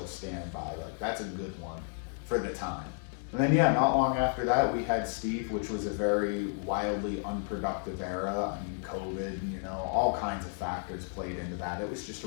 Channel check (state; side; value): silent; right; 56 dB below the other